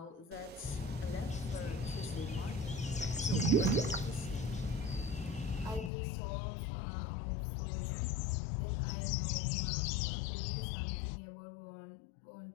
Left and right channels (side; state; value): right; drops out; at 5.9 s